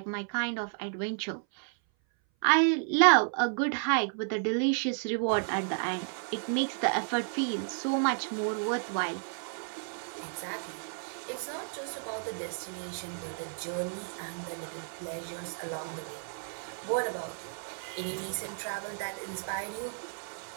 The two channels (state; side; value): silent; left; 56 dB below the other